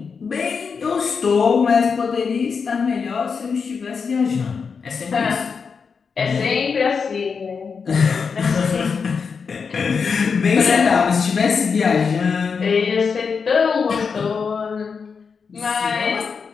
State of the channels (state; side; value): quieter; right; 5.6 dB